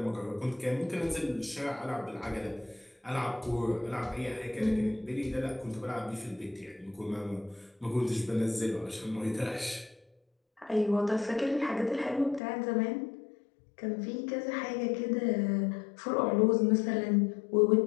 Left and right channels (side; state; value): right; drops out; at 12.4 s